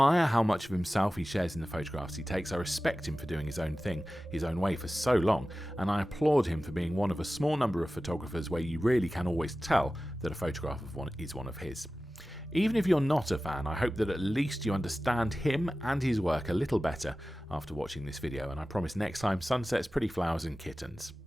how much of himself he shares in the photographs he takes. I respect him for doing his own thing, his own way for so long, and I applaud him for being one of a small number of photographers where you really can always tell that a photograph of one is one of his. Even if you're not a fan, I hope that at least you understand him and his work a little better after watching this video, and I promise next time, sunsets, pretty flowers and kittens.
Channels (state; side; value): normal; both; correlation 0.95